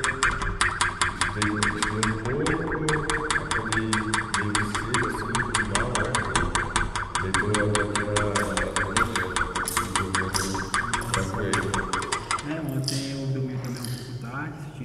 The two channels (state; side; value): identical; both; correlation 1.00